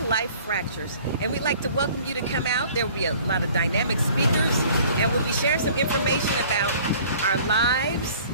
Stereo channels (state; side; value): inverted; both; correlation -0.51